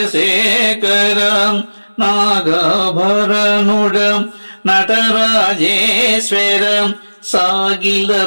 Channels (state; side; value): inverted; both; correlation -1.00